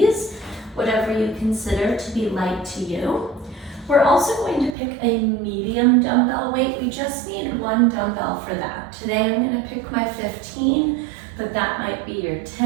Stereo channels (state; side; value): drops out; left; at 4.8 s